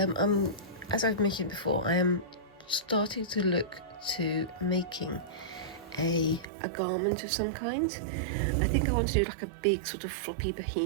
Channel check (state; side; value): drops out; left; at 6.5 s